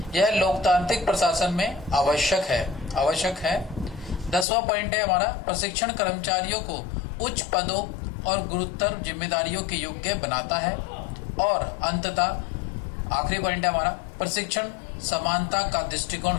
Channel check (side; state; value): right; drops out; at 4.5 s